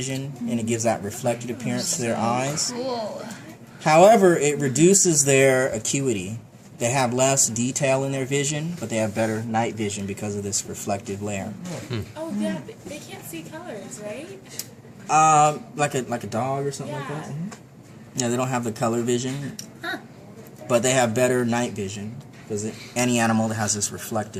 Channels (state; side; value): identical; both; correlation 1.00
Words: and it gives that reflected appearance to their eyes. Cool. However, it reduces their acuity. They have less detail in their vision, but they have better night vision because of this reflective layer. Oh yeah, they can't see colors, right? Like a dog or something like that. Yeah, they don't have the color vision, but they have better night vision because any animal that has this